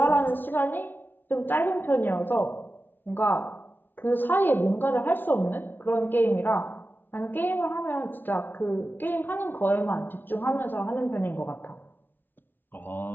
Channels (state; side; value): late; right; 0.095 ms